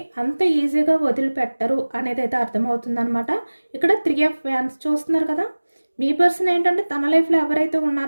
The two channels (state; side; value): inverted; both; correlation -1.00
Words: అంత ఈజీగా వదిలిపెట్టరు అనేది అయితే అర్థమవుతుందనమాట. ఇక్కడ 3 ఆఫ్ వ్యాన్స్ చూస్తున్నారు కదా. మీ పర్సన్ ఏంటంటే తన లైఫ్లో ఎవరైతే